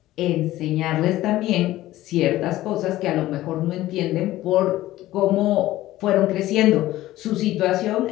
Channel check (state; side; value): quieter; right; 15.6 dB